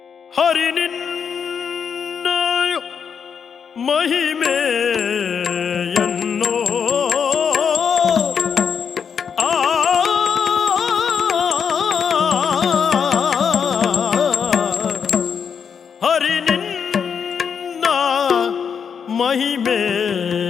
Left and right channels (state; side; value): quieter; right; 6.9 dB